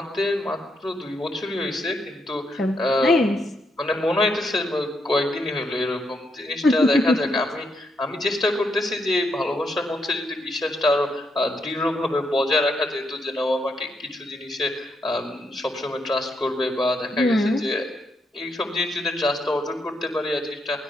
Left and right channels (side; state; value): both; normal; correlation 0.79